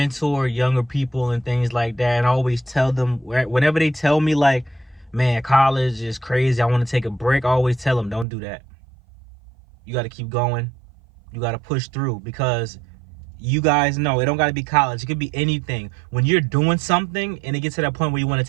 younger people and things like that, and I always tell them, whenever they tell me like, man, college is crazy, I want to take a break, I always tell them, don't do that. You got to keep going. You got to push through, because you guys know it don't got to be college. It could be anything. When you're doing something and it gets to that point where you want to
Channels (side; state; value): left; drops out; at 8.2 s